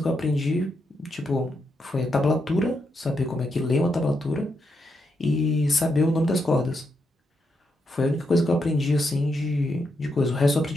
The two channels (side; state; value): both; normal; correlation 0.82